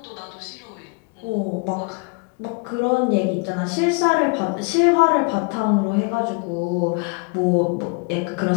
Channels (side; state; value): right; quieter; 31.9 dB